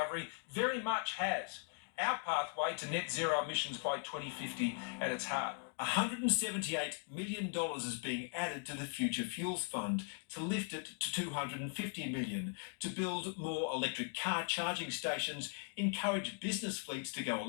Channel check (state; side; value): silent; right; 52 dB below the other